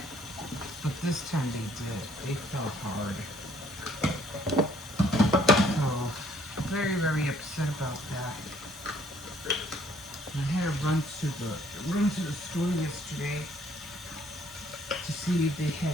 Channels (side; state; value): both; normal; correlation 0.63